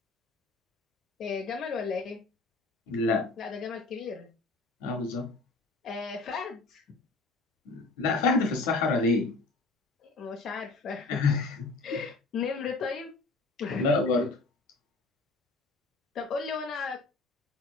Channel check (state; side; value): quieter; right; 3.5 dB